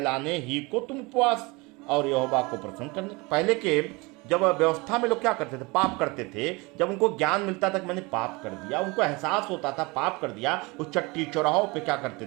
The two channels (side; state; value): left; quieter; 25.5 dB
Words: ही को तुम उपवास और यहोवा को प्रसन्न करने। पहले के जब व्यवस्था में लोग क्या करते थे? पाप करते थे। जब उनको ज्ञान मिलता था कि मैंने पाप कर दिया, उनको एहसास होता था पाप कर दिया, उस चट्टी चौराहों पे क्या करते